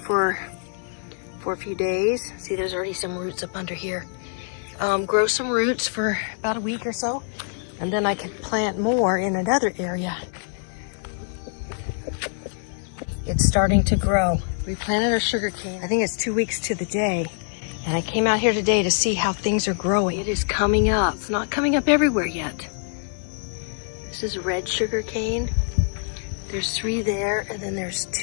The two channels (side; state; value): right; silent; 56 dB below the other